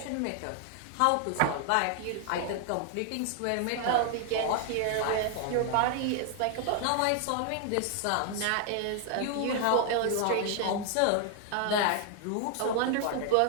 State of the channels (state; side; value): different; both; correlation 0.00